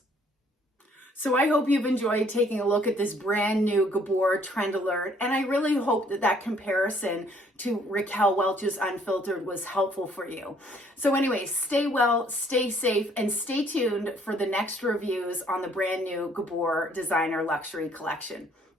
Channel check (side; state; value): both; normal; correlation 0.62